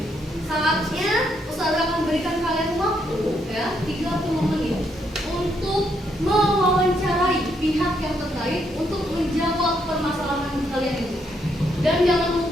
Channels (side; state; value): both; normal; correlation 0.75